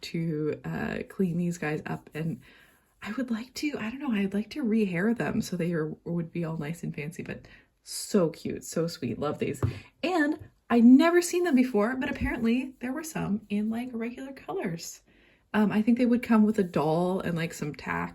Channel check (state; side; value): identical; both; correlation 1.00